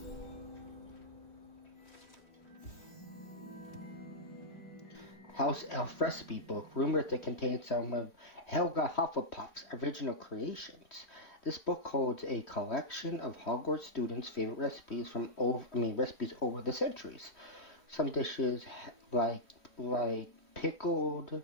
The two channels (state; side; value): late; right; 3.1 ms